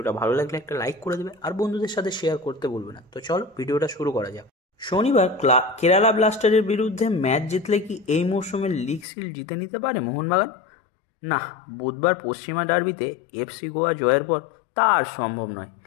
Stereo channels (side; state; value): right; drops out; at 9.1 s